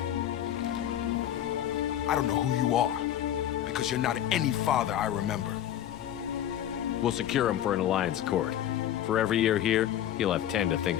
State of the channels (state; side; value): quieter; right; 11.3 dB